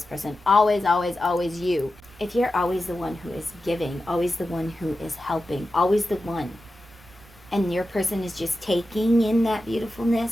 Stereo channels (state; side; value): noise; right; rumble, 24 dB below the sound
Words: person, always, always, always you. If you're always the one who is giving, always the one who is helping, always the one, and your person is just taking in that